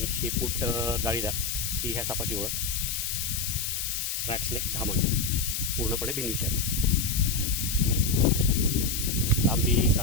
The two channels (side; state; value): left; noise; hiss, 2 dB below the sound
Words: शेपूट जाळीदार ही ह्या सापाची ओळख. रॅट स्नेक धामण, पूर्णपणे बिनविषारी. लांबी